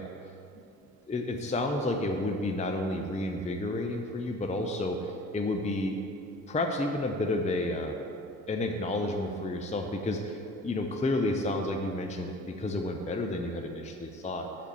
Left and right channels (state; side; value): normal; both; correlation 0.46